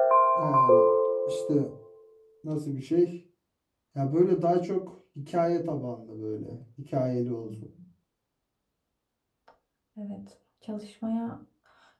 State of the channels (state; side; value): identical; both; correlation 1.00